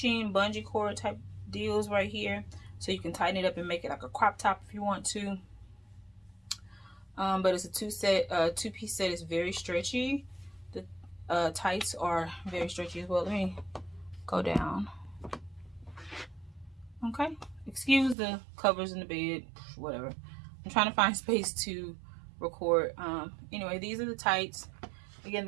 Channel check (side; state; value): left; drops out; at 18.2 s